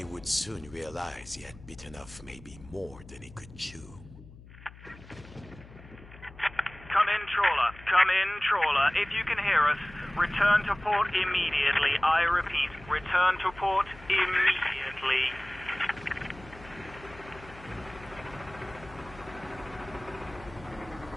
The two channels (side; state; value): left; noise; hum, 19 dB below the sound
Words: would soon realize he had bitten off maybe more than he could chew. Come in, trawler. Come in, trawler. If you can hear us, return to port immediately. I repeat, return to port immediately.